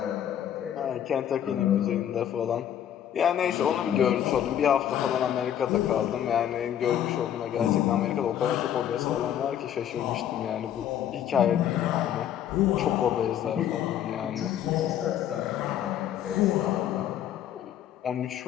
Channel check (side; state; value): right; quieter; 10.4 dB